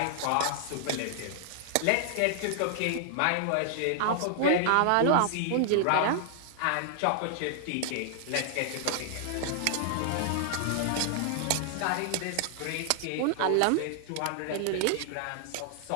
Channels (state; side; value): different; both; correlation 0.00